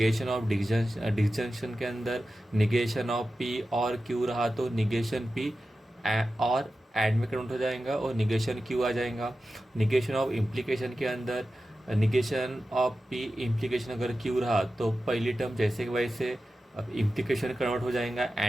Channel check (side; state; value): both; normal; correlation 0.93